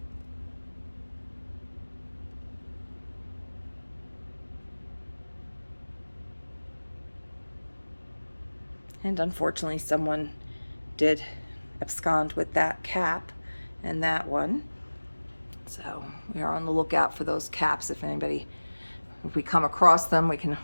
And unfortunately, someone did abscond with that cap and that one. So we are on the lookout for those caps. If we come across them, we can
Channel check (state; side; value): inverted; both; correlation -1.00